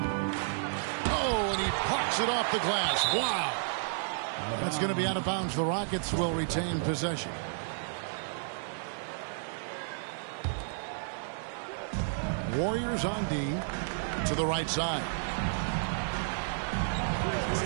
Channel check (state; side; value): silent; left; digital silence